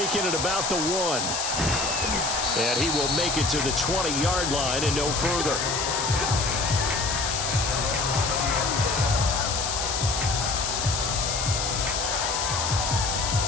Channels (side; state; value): left; noise; hiss, 1 dB below the sound